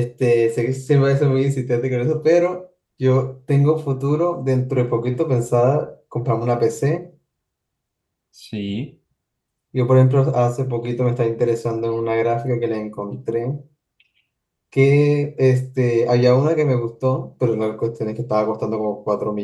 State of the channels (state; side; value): identical; both; correlation 1.00